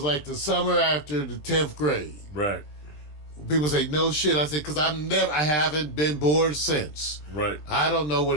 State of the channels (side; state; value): right; late; 20 ms